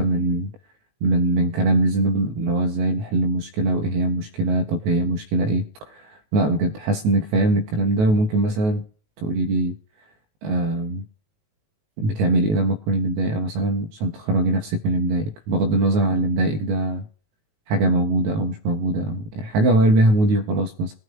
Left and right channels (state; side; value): late; left; 19 ms